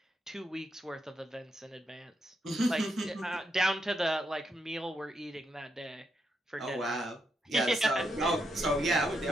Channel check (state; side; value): normal; both; correlation 0.81